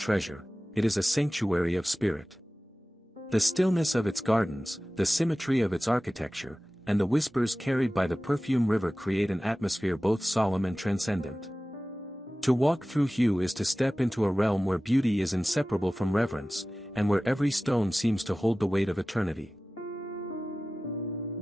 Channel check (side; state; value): both; normal; correlation 0.96